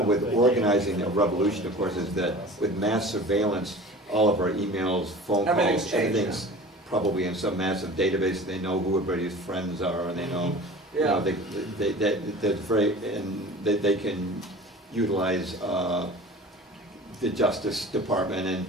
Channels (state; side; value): normal; both; correlation 0.39